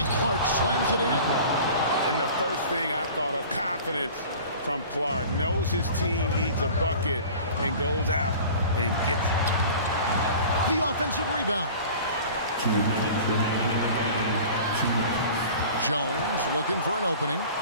Clark slams it in. And the first thing I thought of, confidence from Clark. Knows his team needs a bucket and goes out and gets it. The offensive rebound. 2 minutes remaining in the game. 2 minutes. Jones looking for an opening,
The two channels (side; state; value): both; inverted; correlation -0.42